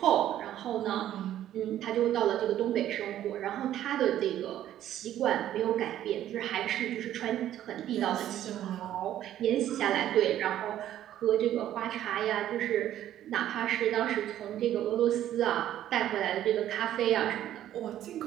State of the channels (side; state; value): left; quieter; 12.0 dB